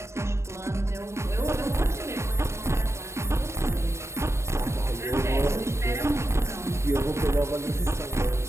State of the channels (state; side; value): late; left; 0.13 ms